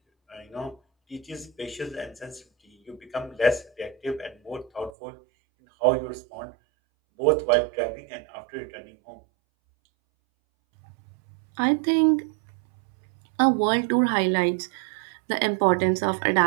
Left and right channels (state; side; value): drops out; left; at 4.9 s